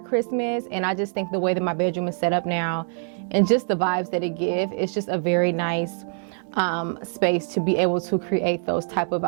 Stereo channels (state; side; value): silent; left; digital silence